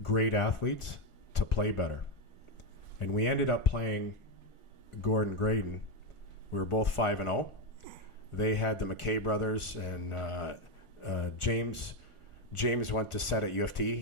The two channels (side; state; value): right; late; 1.4 ms